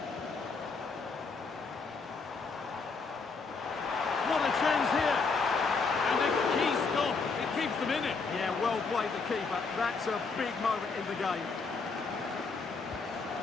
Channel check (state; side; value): quieter; right; 4.5 dB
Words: What a chance here. And a key stop. It keeps them in it. Yeah, well played the keeper. That's a big moment in the game.